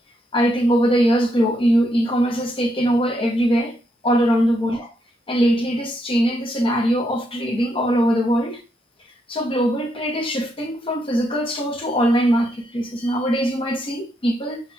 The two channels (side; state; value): both; normal; correlation 0.78